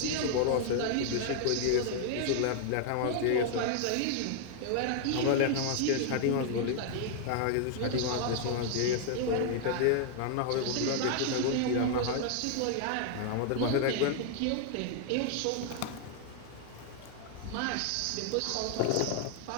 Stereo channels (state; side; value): different; both; correlation 0.00